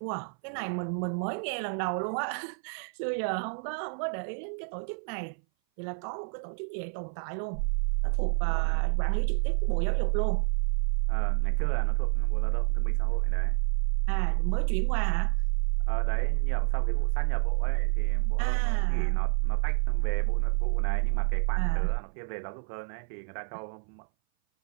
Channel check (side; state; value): left; silent; 58 dB below the other